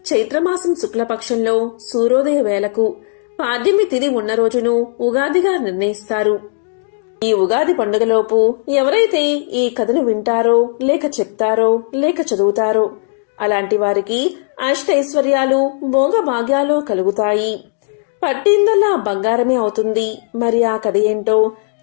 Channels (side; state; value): right; silent; digital silence